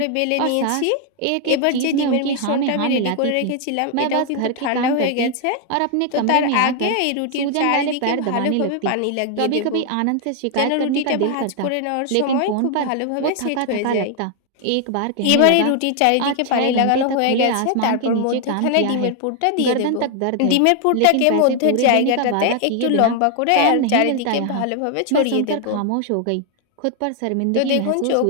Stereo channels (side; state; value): both; different; correlation 0.00